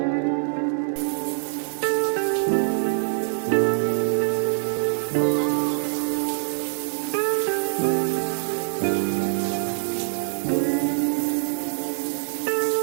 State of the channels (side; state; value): left; silent; digital silence